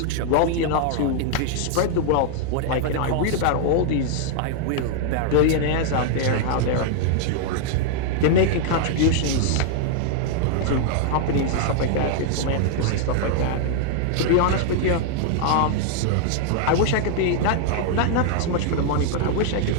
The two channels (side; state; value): both; different; correlation 0.00